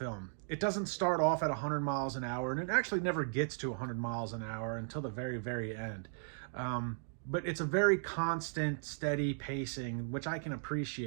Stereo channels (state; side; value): silent; left; digital silence